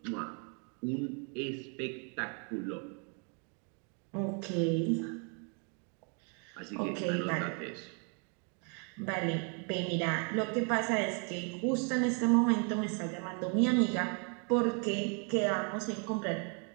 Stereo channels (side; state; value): left; quieter; 38.5 dB